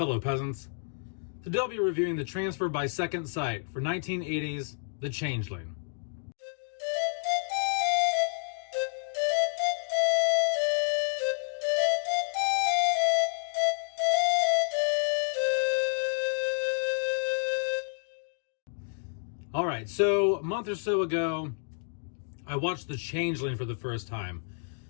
peasants. Today I'll be reviewing the transfer by Second Sight for 1980's The Changeling. Alright, so a month or so ago, I watched The Changeling for the first time.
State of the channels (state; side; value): silent; right; 58 dB below the other